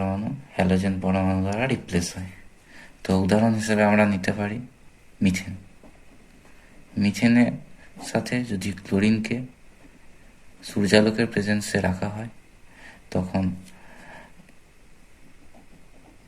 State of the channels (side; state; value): both; identical; correlation 1.00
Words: হ্যালোজেন পরমাণু দ্বারা রিপ্লেস হয়। তো উদাহরণ হিসেবে আমরা নিতে পারি মিথেন। মিথেনের সাথে যদি ক্লোরিনকে সূর্যালোকের প্রেজেন্সে রাখা হয়, তখন